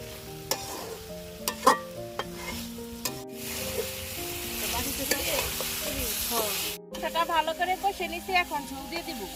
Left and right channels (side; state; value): both; identical; correlation 1.00